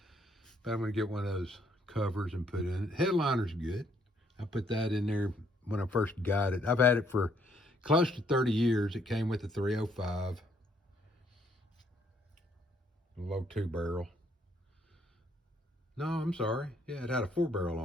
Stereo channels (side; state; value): both; normal; correlation 0.69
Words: But I'm gonna get one of those covers and put in it. Headliner's good. I put that in there when I first got it. I've had it for close to 30 years. It came with a 305. A low 2-barrel. No, I'm sorry. Yeah, it had a 4-barrel